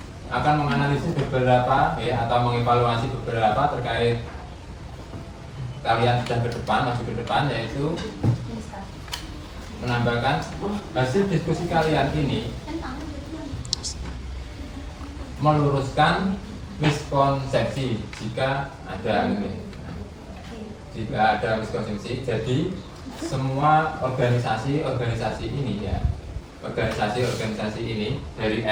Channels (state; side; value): identical; both; correlation 1.00